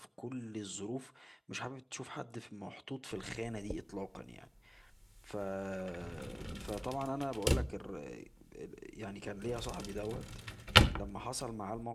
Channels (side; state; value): both; identical; correlation 1.00